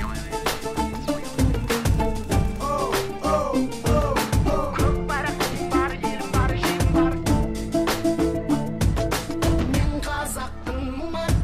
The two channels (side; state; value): both; identical; correlation 1.00